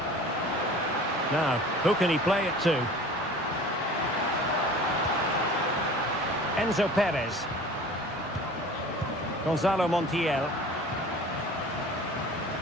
Now, who can he play it to? Enzo Perez. Gonzalo Montiel.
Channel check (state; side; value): normal; both; correlation 0.42